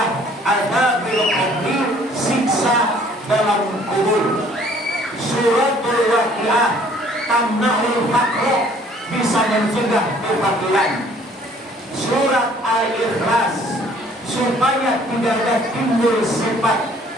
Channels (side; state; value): both; normal; correlation 0.57